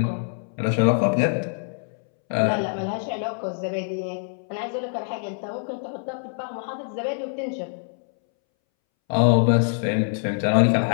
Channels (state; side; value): silent; right; 62 dB below the other